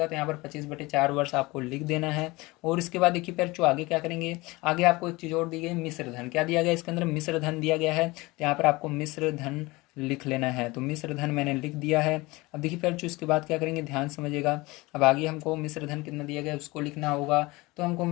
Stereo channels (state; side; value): quieter; right; 22.3 dB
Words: तो यहाँ पर 25/4 वर्ष आपको लिख देना है। और इसके बाद देखिए फिर जो आगे क्या करेंगे, आगे आपको एक चीज़ और दी गई, मिश्र धन। क्या दिया गया इसके अंदर, मिश्र धन दिया गया है। तो यहाँ पर आपको मिश्र धन लिख लेना है। तो मिश्र धन मैंने लिख दिया है। अब देखिए फिर जो इसके बाद क्या करेंगे, ध्यान समझिएगा। अब आगे हमको मिश्र धन कितना दिया गया है उसको लिखना होगा। तो हमको